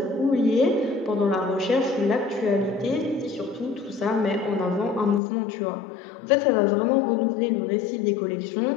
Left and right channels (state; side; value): drops out; right; at 5.2 s